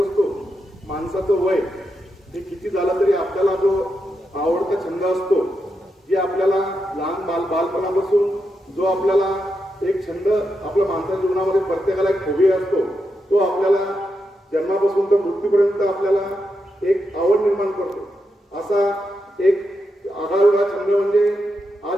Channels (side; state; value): both; normal; correlation 0.85